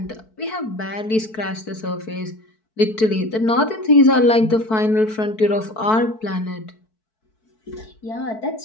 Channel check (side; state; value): right; late; 4.6 ms